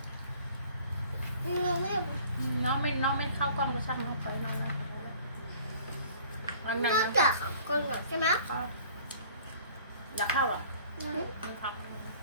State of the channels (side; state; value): both; inverted; correlation -0.51